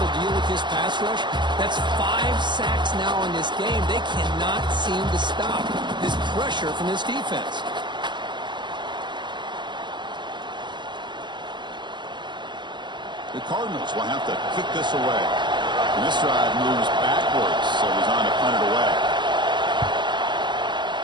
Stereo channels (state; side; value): late; left; 0.22 ms